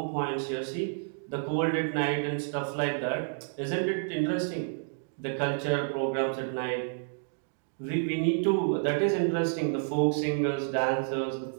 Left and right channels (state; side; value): silent; left; digital silence